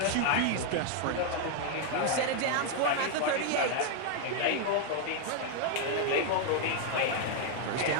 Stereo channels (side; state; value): both; different; correlation 0.00